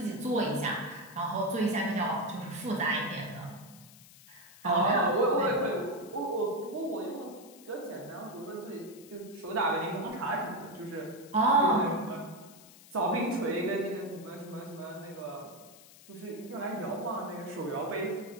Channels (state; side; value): noise; left; hiss, 21 dB below the sound